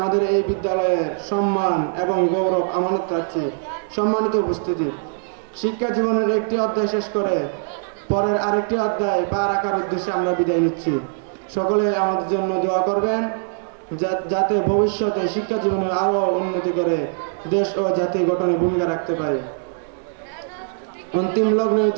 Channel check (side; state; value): left; silent; digital silence